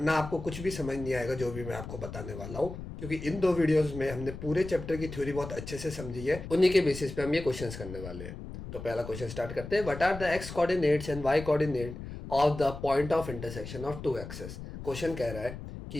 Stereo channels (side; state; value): left; noise; rumble, 10 dB below the sound